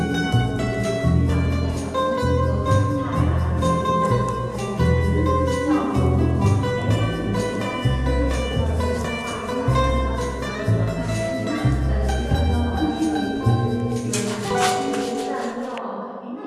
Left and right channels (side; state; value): both; identical; correlation 1.00